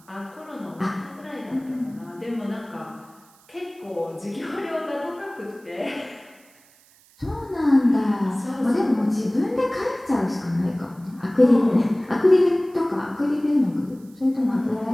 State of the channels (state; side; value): noise; right; hiss, 29 dB below the sound